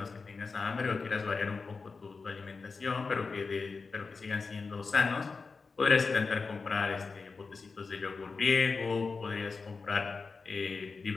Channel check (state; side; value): quieter; right; 4.5 dB